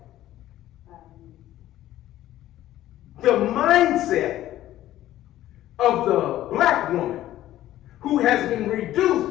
The mindset of the black woman who has been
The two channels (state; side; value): quieter; right; 13.8 dB